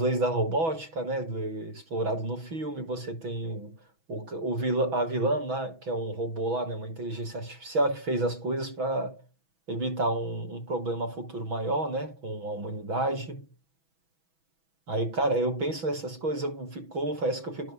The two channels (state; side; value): late; left; 6.1 ms